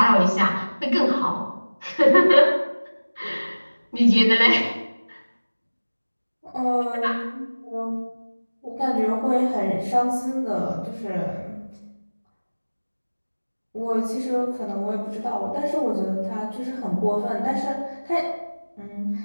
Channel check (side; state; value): both; inverted; correlation -1.00